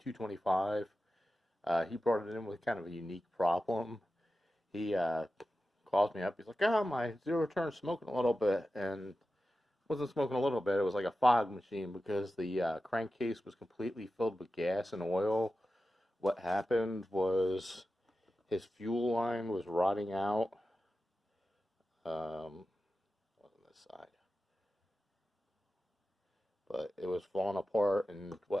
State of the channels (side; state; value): both; normal; correlation 0.93